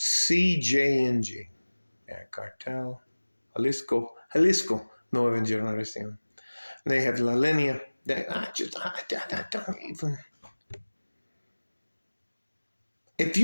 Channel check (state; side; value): inverted; both; correlation -1.00